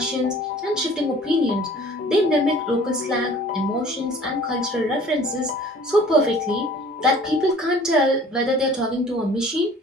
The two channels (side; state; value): both; normal; correlation 0.49